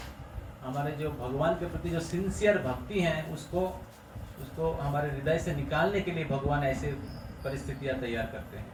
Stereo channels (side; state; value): both; identical; correlation 1.00